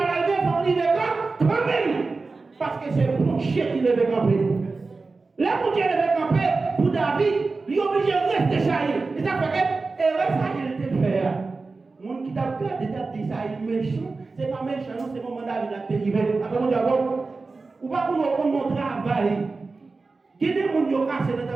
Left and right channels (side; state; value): left; quieter; 3.9 dB